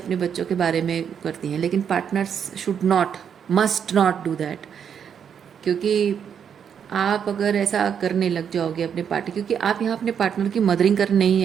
बच्चों के बारे में करती हैं, लेकिन partners should not, must not do that. क्योंकि आप अगर ऐसा करने लग जाओगे अपने पार्टनर, क्योंकि आप यहाँ अपने पार्टनर की मदरिंग करने नहीं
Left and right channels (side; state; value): left; quieter; 7.8 dB